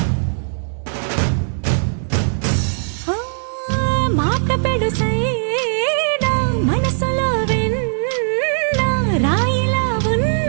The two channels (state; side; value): silent; left; digital silence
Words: మాట పెడుసైనా మనసులో వెన్న రాయిలా